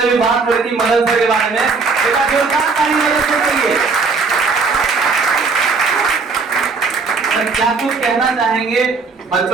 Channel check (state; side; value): quieter; left; 4.6 dB